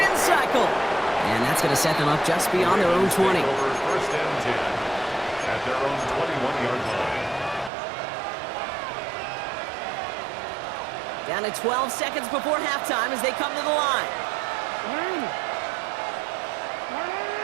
cycle. And that's going to set them up just beyond their own 20. Over first and 10 at their own 21-yard line. Down to 12 seconds before halftime as they come to the line.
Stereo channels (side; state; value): left; drops out; at 7.7 s